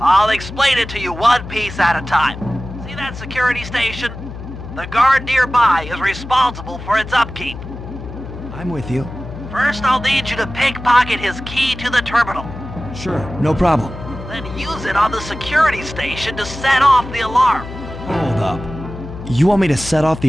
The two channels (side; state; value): left; noise; hum, 11 dB below the sound